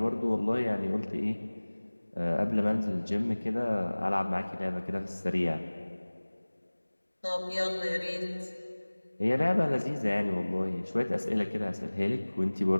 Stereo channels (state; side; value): inverted; both; correlation -1.00